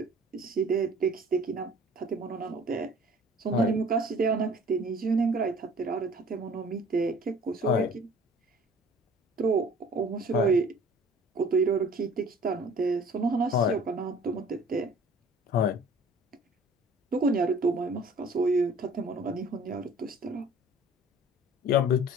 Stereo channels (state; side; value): normal; both; correlation 0.49